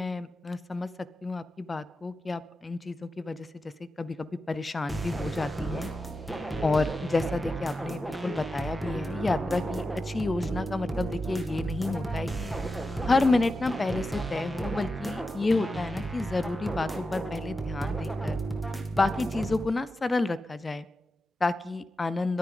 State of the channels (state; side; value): normal; both; correlation 0.90